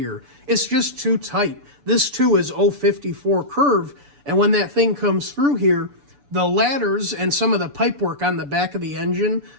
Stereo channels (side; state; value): left; late; 6.9 ms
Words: It's just too tight. This too is 054 curve, and when that thing comes through here, the ladders and some of the pipework on the back of the engine